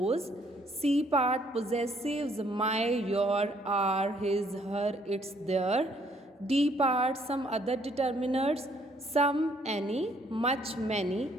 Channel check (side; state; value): both; normal; correlation 0.66